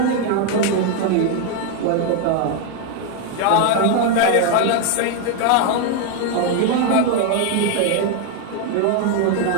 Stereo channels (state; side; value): different; both; correlation 0.01